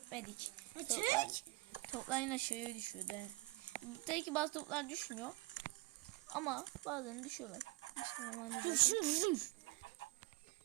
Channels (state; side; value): quieter; left; 22.4 dB